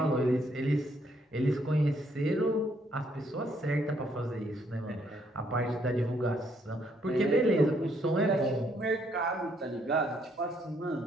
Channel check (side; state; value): both; normal; correlation 0.70